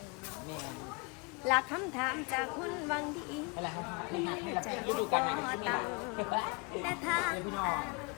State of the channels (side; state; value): right; quieter; 30.6 dB